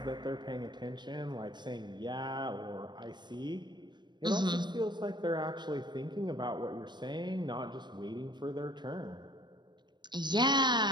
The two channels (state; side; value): late; left; 0.22 ms